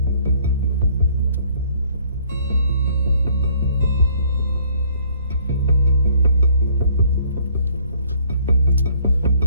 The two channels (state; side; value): inverted; both; correlation -0.61